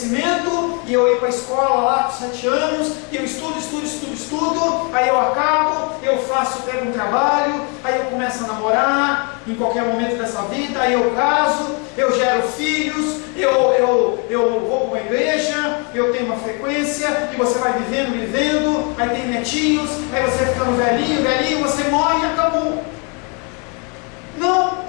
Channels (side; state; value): right; quieter; 34.9 dB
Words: e eu ir para a escola lá com 7 anos, e eu estudo, aí eu acabo, eu pego um trabalho, aí eu começo a namorar, em qualquer momento dessa vida, aí eu caso, eu gero filhos, eu vou para uma igreja, eu tenho uma frequência, e você vai vivendo, aí tem netinhos, aí você vai ficando velhinho, você morre e acabou. Não